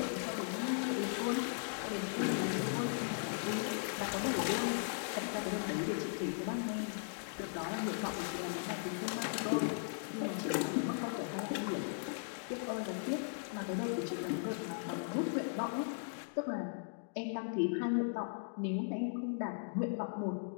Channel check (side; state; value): right; silent; digital silence